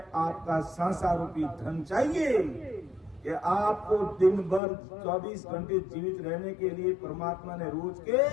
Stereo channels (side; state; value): right; drops out; at 4.6 s